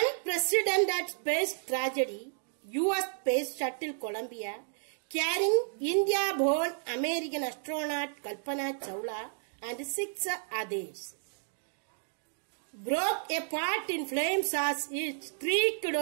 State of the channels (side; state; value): left; silent; digital silence